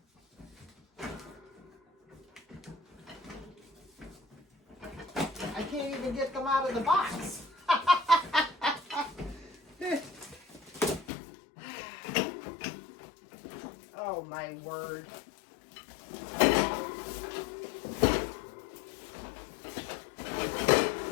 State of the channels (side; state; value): right; drops out; at 11.1 s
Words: I can't even get them out of the box. Oh, my word.